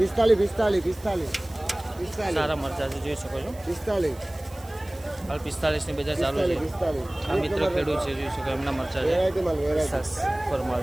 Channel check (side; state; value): right; noise; hiss, 22 dB below the sound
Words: સારા મરચા છે, જોઈ શકો છો. 45 હાલ 45 ની બજાર ચાલુ છે. આ મિત્ર ખેડૂત છે, જોઈ શકો એમના મરચા છે. ફરમાલ